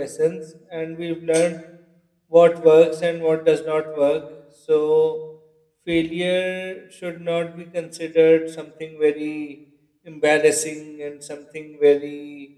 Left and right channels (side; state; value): both; identical; correlation 1.00